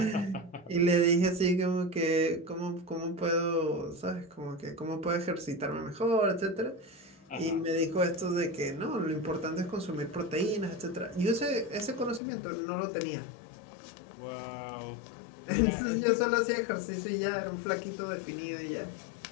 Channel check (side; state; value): right; drops out; at 12.2 s